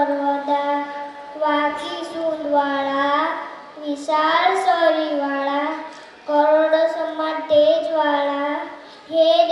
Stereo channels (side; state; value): both; identical; correlation 1.00